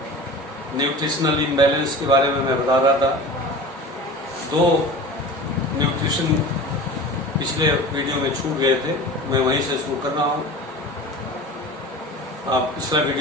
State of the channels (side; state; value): both; normal; correlation 0.36